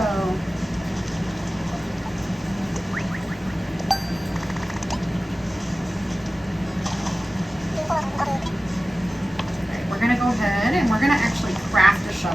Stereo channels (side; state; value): both; normal; correlation 0.95